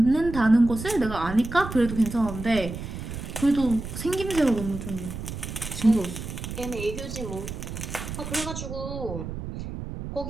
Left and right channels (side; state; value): right; noise; rumble, 8 dB below the sound